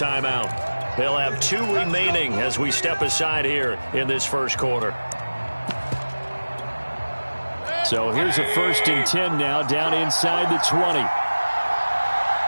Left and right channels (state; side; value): inverted; both; correlation -1.00